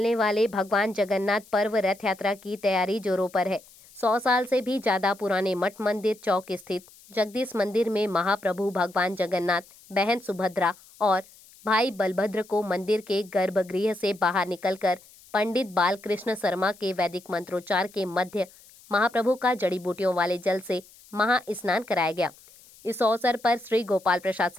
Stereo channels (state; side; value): noise; left; hiss, 24 dB below the sound